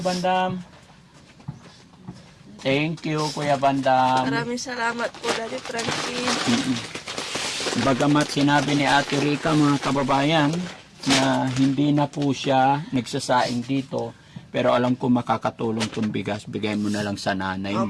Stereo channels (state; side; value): identical; both; correlation 1.00